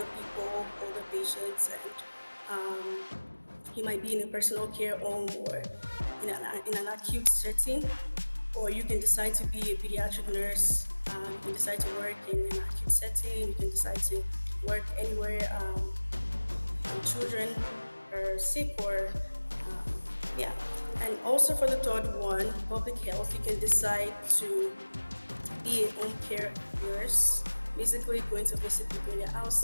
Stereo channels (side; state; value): both; inverted; correlation -1.00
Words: people, older patients, and you might be in a personal care home or in an acute setting. Or you can decide to be a pediatric nurse. You can decide to work in an acute setting. You can decide to work anywhere children are sick or yeah. And also for the third one, public health, you can decide to be a home care nurse, basically going to visit people in their